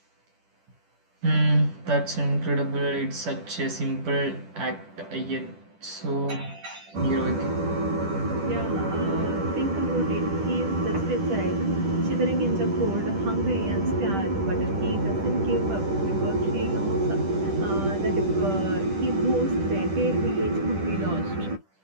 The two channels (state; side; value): late; left; 10 ms